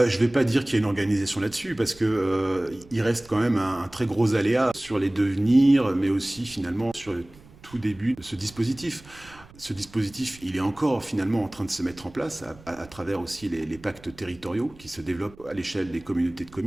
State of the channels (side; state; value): right; noise; rumble, 23 dB below the sound